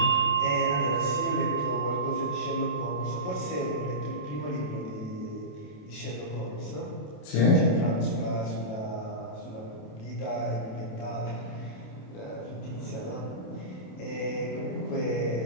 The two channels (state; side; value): late; right; 27 ms